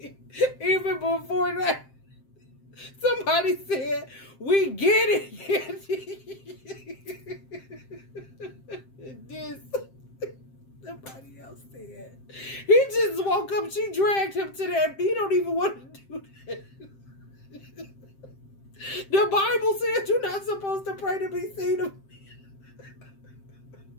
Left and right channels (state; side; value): late; right; 7.6 ms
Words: Even before that, somebody said, "We get it." This, somebody else said, he just woke up. She dragged him to that. He don't even want to do that. The Bible says you're not supposed to pray to be seen of me.